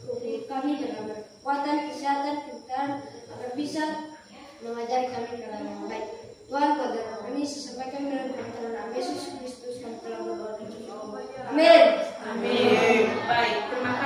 kami dalam kekuatan, kesehatan, kepintaran, agar bisa mengajari kami ke dalam yang baik. Tuhan, pada kami sesampaikan dengan pertolongan Yesus Kristus kami telah berdoa. Amin. Amin. Baik, terima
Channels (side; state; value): both; identical; correlation 1.00